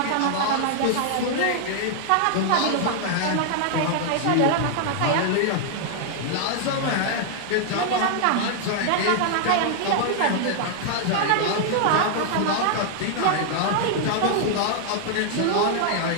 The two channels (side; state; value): both; different; correlation -0.01